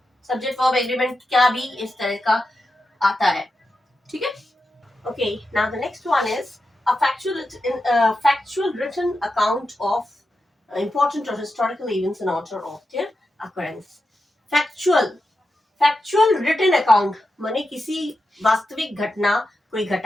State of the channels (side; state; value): both; normal; correlation 0.89